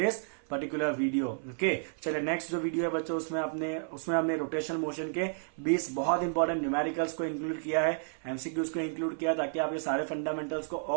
particular video. Okay, चलिए नेक्स्ट जो वीडियो है बच्चों उसमें हमने रोटेशन मोशन के 20 बहुत इंपॉर्टेंट न्यूमेरिकल्स को इंक्लूड किया है, एमसीक्यूज को इंक्लूड किया है, ताकि आप ये सारे फंडामेंटल्स को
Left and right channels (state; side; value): silent; left; 57 dB below the other